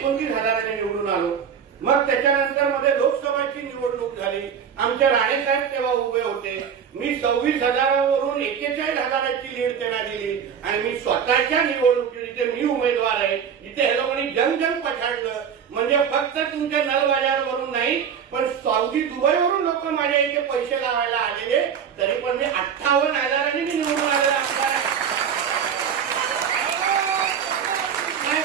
निवडून आलो. मग त्याच्यानंतर मध्ये लोकसभाची निवडणूक झाली. आमच्या राणेसाहेब तेव्हा उभे होते. मी 26,000वरून 41,000ची लीड त्यांना दिली. आणि मी स्वतःच्या निवडणुकीत जिथे मी उमेदवार आहे, जिथे हे लोकांनी जंग पछाडलं, म्हणजे फक्त तुमच्या नलबाजारवरून नाही पण सौदी दुबईवरून लोक माझ्या इथे पैसे लावायला आलेले, तरी पण मी 58,000 मी निवडून आलेला आमदार आहे.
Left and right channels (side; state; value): left; quieter; 7.6 dB